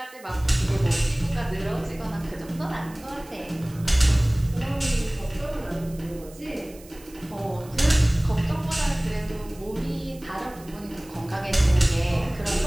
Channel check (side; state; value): right; noise; hiss, 22 dB below the sound